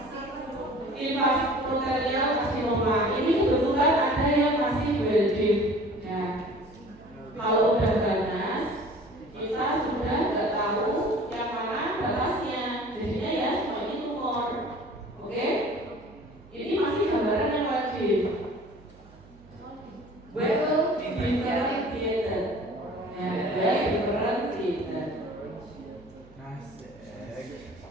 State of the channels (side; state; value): right; noise; hum, 24 dB below the sound